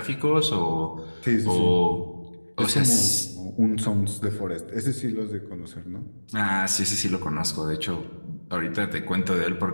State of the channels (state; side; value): inverted; both; correlation -1.00